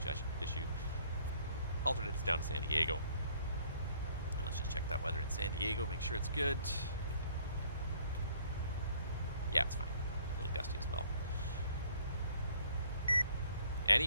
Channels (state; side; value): inverted; both; correlation -0.60